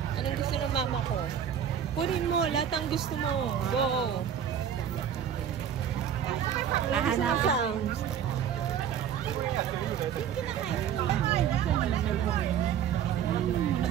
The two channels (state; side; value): quieter; left; 8.9 dB